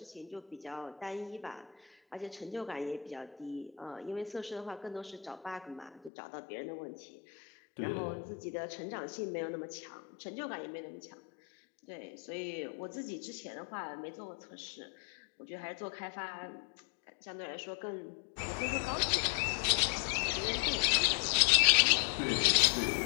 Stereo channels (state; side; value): drops out; right; at 6.1 s